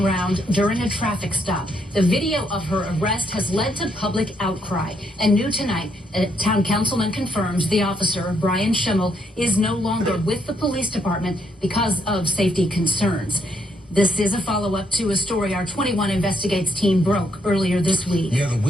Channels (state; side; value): normal; both; correlation 0.73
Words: during a traffic stop. The video of her arrest has led to public outcry. And new tonight, a town councilman confirms the officer, Brian Schimmel, is no longer with the police department because of safety concerns. This is a follow-up to a story our 21 Investigates team broke earlier this week. Yeah, the